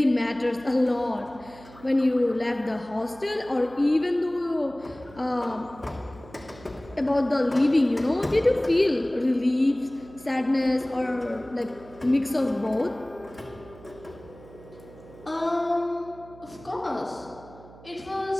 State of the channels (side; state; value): right; noise; hum, 21 dB below the sound